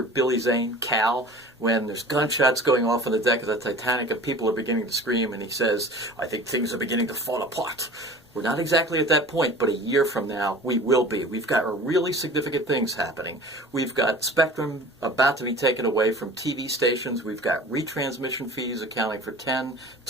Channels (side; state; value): both; normal; correlation 0.41